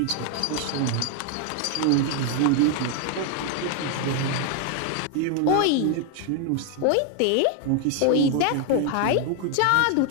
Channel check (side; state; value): both; different; correlation 0.01